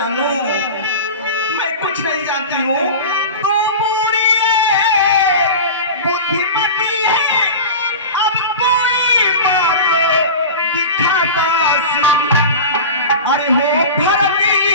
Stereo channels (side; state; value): both; inverted; correlation -0.31